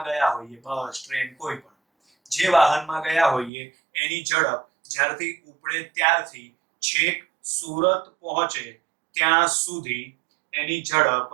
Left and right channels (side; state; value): left; drops out; at 3.5 s